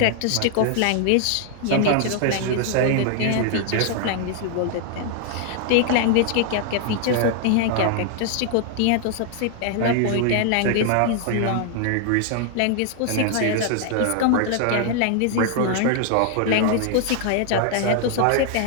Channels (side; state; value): both; different; correlation 0.00